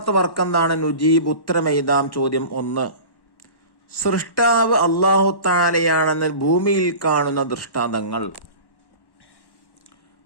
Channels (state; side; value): late; right; 1.1 ms